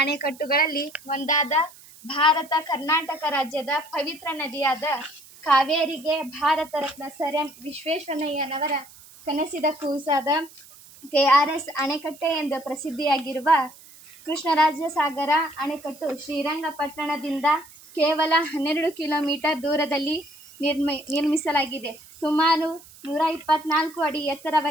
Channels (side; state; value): right; noise; hiss, 22 dB below the sound